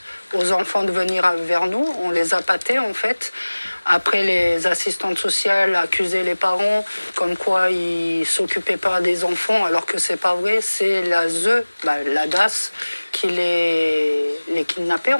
aux enfants de venir vers nous. On les appâtait en fait. Après, les assistantes sociales accusaient les parents comme quoi ils ne s'occupaient pas des enfants, alors que c'est pas vrai. C'est la DAS qui les kidnappait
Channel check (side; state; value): both; inverted; correlation -1.00